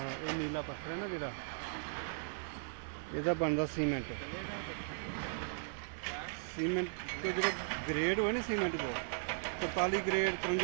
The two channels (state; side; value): silent; left; digital silence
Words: ये नीला पत्थर है ना जिहड़ा ਇਹਦਾ ਬਣਦਾ ਸੀਮੈਂਟ। ਸੀਮੈਂਟ ਤੋਂ ਜਿਹੜਾ ਗ੍ਰੇਡ ਹੋਏ ਨਾ ਸੀਮੈਂਟ ਕੋ 43 ਗ੍ਰੇਡ